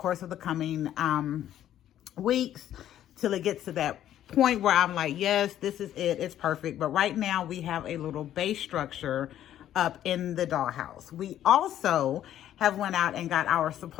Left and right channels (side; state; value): right; quieter; 11.6 dB